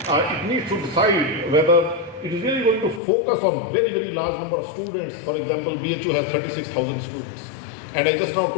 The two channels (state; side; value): drops out; right; at 3.0 s